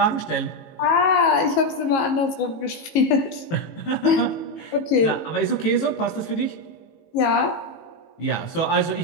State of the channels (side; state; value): right; late; 18 ms